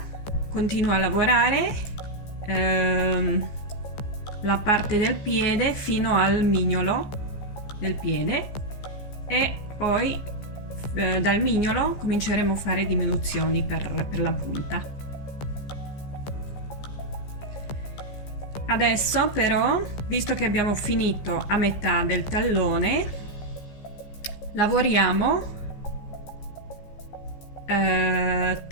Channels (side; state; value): right; late; 15 ms